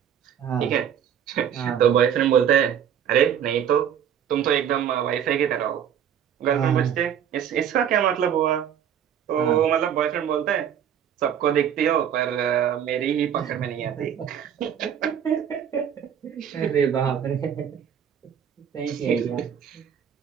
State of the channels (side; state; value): left; quieter; 9.0 dB